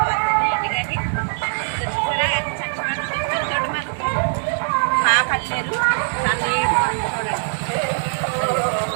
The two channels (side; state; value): left; silent; digital silence